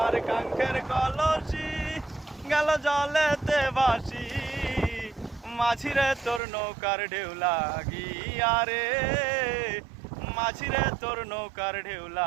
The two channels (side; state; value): left; drops out; at 6.4 s